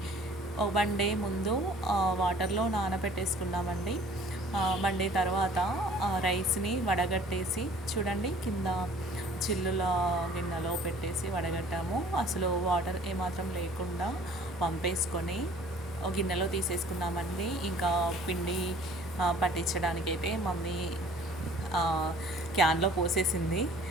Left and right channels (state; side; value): normal; both; correlation 0.52